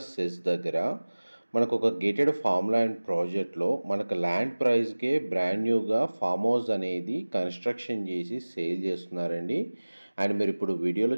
సెస్ దగ్గర మనకు ఒక గేటెడ్ ఫామ్ ల్యాండ్ ప్రాజెక్ట్లో మనకు ల్యాండ్ ప్రైస్కే బ్రాండ్ న్యూగా ఫామ్ హౌస్ అనేది కన్స్ట్రక్షన్ చేసి సేల్ చేస్తున్నారండి. అండ్ మీరు ఇప్పుడు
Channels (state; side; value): inverted; both; correlation -1.00